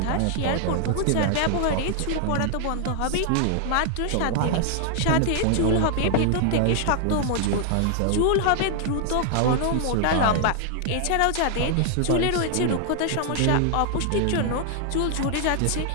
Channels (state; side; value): different; both; correlation 0.00